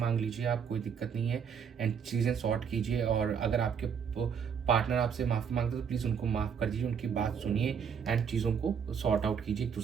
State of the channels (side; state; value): left; quieter; 7.1 dB